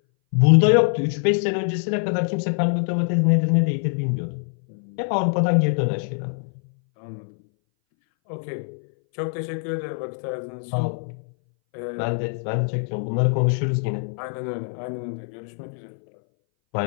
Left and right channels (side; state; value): right; silent; 61 dB below the other